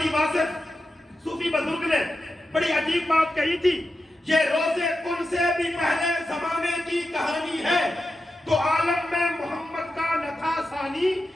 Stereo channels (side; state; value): both; normal; correlation 0.90